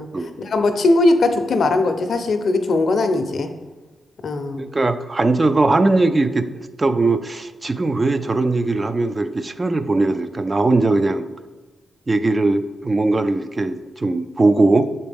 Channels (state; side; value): normal; both; correlation 0.90